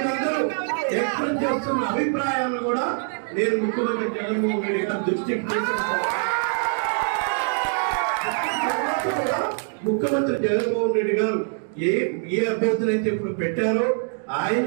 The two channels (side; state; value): left; silent; 63 dB below the other